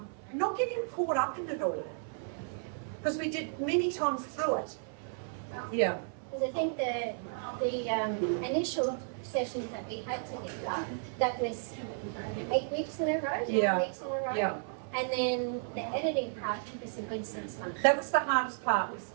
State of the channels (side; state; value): left; silent; 56 dB below the other